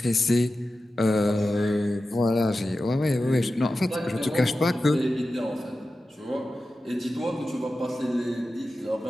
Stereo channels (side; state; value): both; normal; correlation 0.93